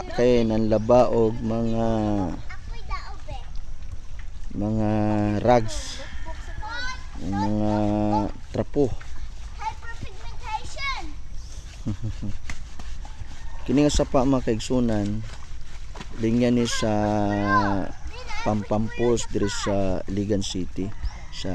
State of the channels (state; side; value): identical; both; correlation 1.00